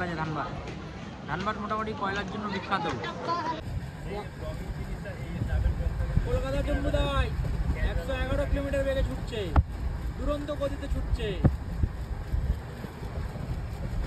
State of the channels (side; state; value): both; identical; correlation 1.00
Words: আছে। ধানবাদ মোটামুটি কয়লার জন্য বিখ্যাত। কলকাতা জম্মুটাই 111 কিলোমিটার বেগে ছুটছে, দুরন্ত গতিতে ছুটছে।